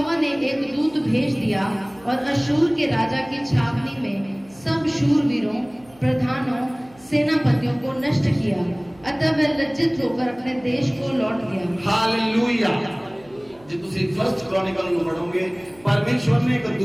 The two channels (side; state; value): right; noise; hum, 27 dB below the sound